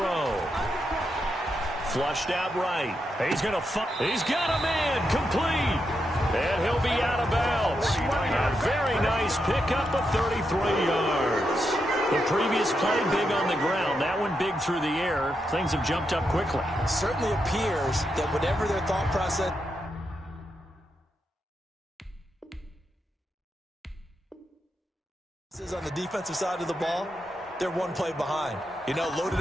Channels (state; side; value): normal; both; correlation 0.84